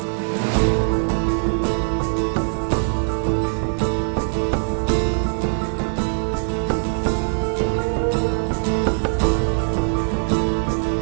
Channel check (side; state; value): left; silent; digital silence